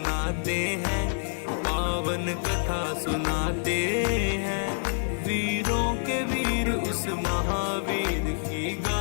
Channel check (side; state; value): right; silent; digital silence